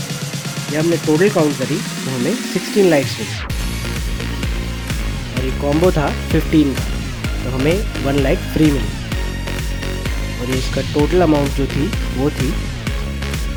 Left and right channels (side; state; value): both; identical; correlation 1.00